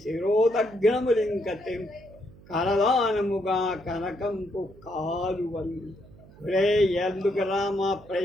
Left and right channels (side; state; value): right; noise; hum, 23 dB below the sound